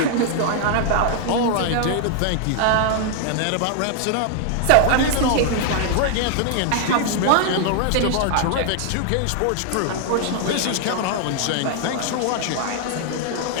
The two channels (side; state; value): both; different; correlation 0.00